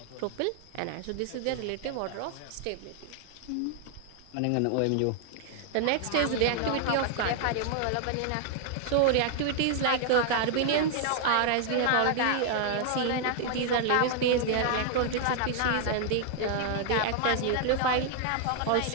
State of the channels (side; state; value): both; different; correlation 0.00